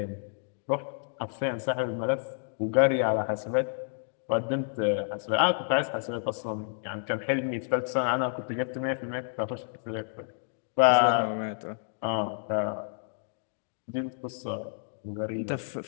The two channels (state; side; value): silent; right; digital silence